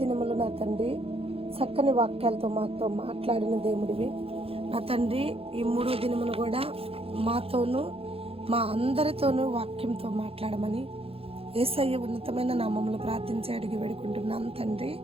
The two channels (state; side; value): late; left; 0.28 ms